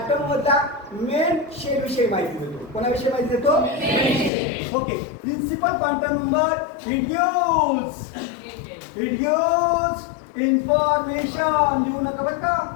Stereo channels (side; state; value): right; drops out; at 4.3 s